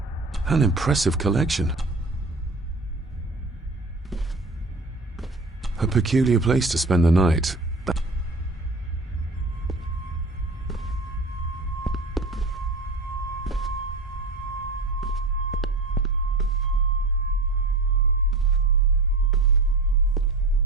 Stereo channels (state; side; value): quieter; left; 3.1 dB